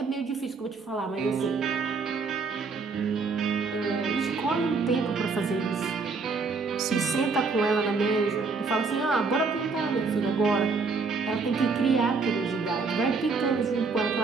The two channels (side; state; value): left; quieter; 4.5 dB